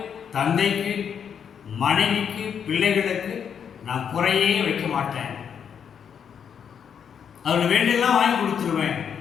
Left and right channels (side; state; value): right; quieter; 7.7 dB